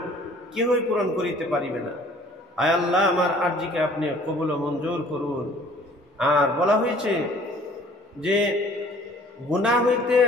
কেহই পূরণ করিতে পারিবে না। আয় আল্লাহ, আমার আরজিকে আপনি কবুল ও মঞ্জুর করুন। আর বলা হয়েছে যে গুনাহ হইতে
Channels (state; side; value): normal; both; correlation 0.54